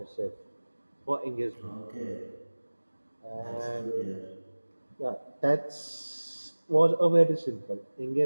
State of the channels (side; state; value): both; inverted; correlation -1.00